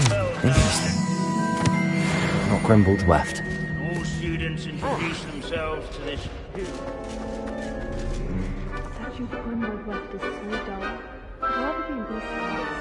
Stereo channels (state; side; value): identical; both; correlation 1.00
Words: Interesting. Not Grimbold Weft. All students introduce themselves to this... Statue of Grimbold Weft is so dull. I'd rather be in these slides.